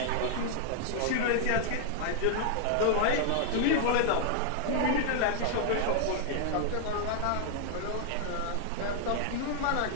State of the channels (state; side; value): different; both; correlation 0.00